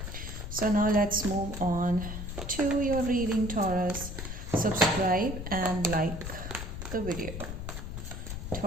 so now let's move on to your reading, Taurus. Subscribe and like the video.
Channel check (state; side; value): noise; left; rumble, 6 dB below the sound